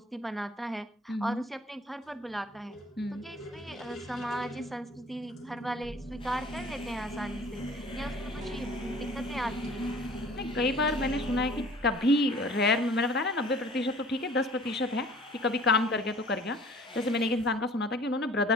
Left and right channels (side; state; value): both; normal; correlation 0.50